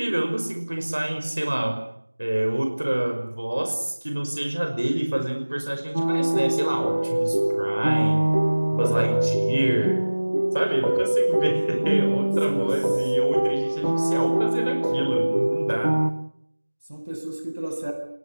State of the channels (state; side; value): inverted; both; correlation -1.00